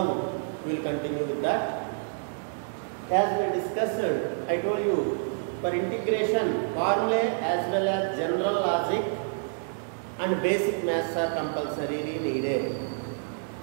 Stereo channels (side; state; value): left; silent; 59 dB below the other